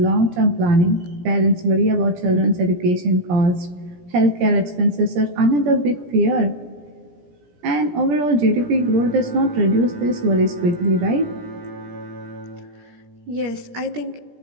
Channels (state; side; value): late; left; 17 ms